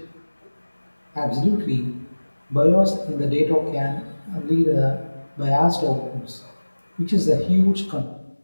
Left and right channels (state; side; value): inverted; both; correlation -1.00